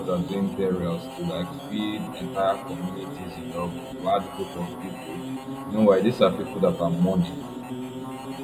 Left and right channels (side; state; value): both; identical; correlation 1.00